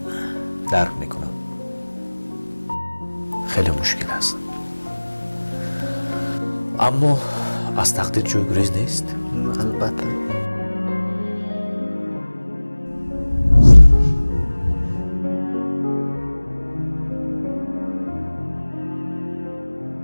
درک میکنم، خیلی مشکل است، اما از تقدیر جای گریز نیست. البته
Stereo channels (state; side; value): inverted; both; correlation -1.00